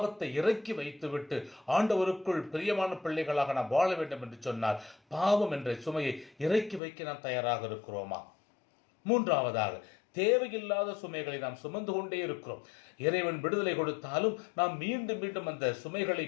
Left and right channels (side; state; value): right; drops out; at 6.8 s